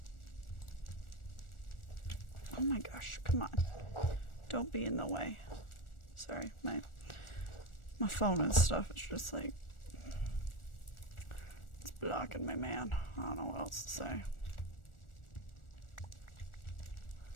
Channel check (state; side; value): late; right; 1.4 ms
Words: Oh my gosh, come on. Don't be in the way. Sorry, my phone and stuff is just like, it's blocking me, man. I don't know what else to say.